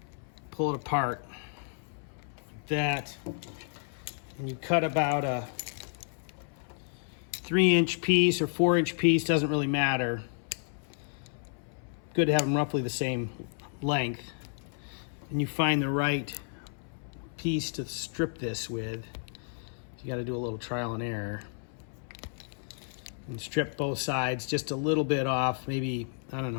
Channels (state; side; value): silent; right; 57 dB below the other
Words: pull it apart like that, and you cut about a 3-inch piece or 4-inch piece, doesn't really matter. Good to have them roughly the same length. And you find the right piece to strip this with. You got to do a little trial and error. And strip both sides just a little bit off, maybe, I don't